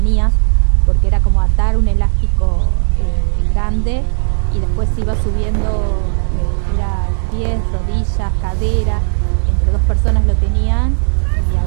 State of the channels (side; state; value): left; silent; digital silence